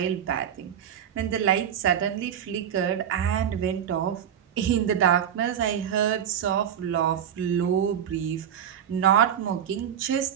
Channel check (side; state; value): left; quieter; 9.2 dB